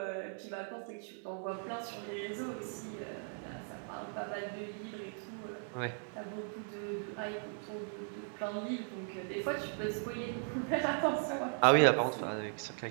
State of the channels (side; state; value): left; silent; 53 dB below the other